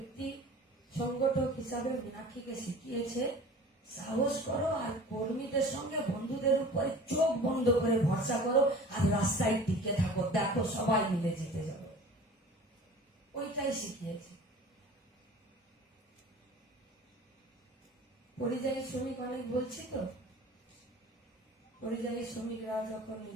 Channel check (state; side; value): normal; both; correlation 0.42